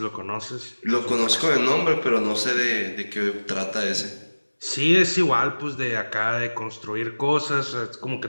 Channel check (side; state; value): both; inverted; correlation -1.00